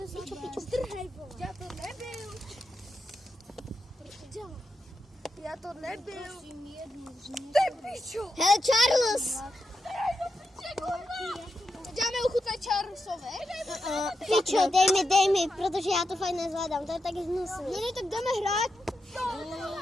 Já to nebyl. Hele, Charles. Dáme ochutnat Charlesovi. Pičo, dej mi, protože já to fakt nezvládám, to je tak hnusný. No ne, tak jdeme hrát.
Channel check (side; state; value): both; normal; correlation 0.86